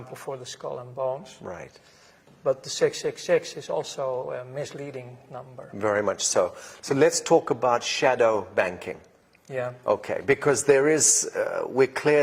for the skull and bones. Right. But the 666 is also a misleading number. Very much so. So let's talk about shadow banking. Yeah. Okay, because there is, we're clear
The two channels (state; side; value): identical; both; correlation 1.00